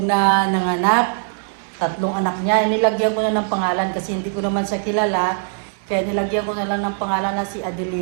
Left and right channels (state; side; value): silent; left; digital silence